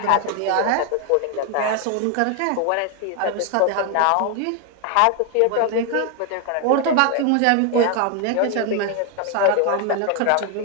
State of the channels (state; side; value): different; both; correlation 0.01